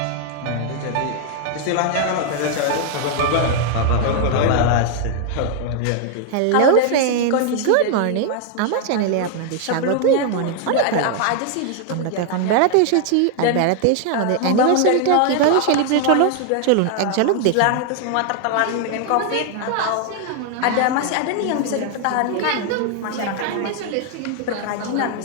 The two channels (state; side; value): different; both; correlation 0.00